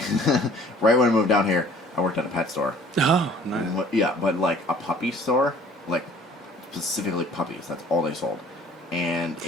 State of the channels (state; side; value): normal; both; correlation 0.52